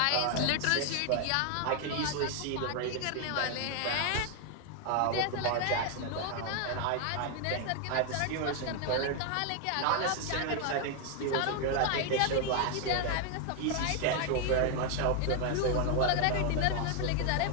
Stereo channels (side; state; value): both; different; correlation 0.00